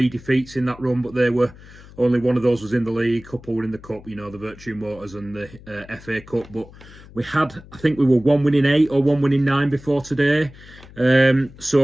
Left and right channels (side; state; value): left; noise; hum, 20 dB below the sound